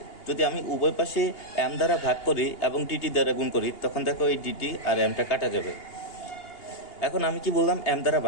যদি আমি উভয় পাশে এম দ্বারা ভাগ করি এবং ডিটি দ্বারা গুণ করি, তখন দেখো এই ডিটি আর এমটা কাটা যাবে। এখন আমি কি বললাম? এম দ্বারা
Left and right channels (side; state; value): right; late; 2.8 ms